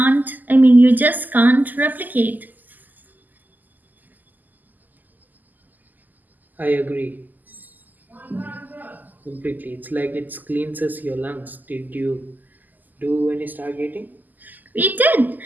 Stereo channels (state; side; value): late; left; 0.084 ms